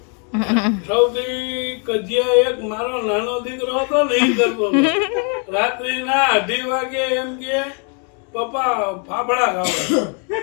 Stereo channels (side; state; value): right; quieter; 39.3 dB